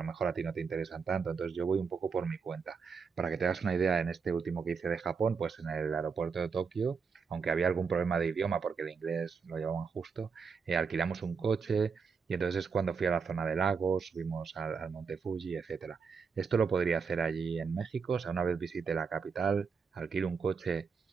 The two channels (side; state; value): left; quieter; 5.5 dB